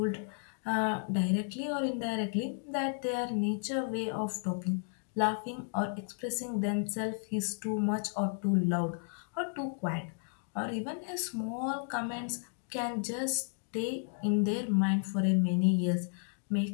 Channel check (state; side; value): silent; right; 56 dB below the other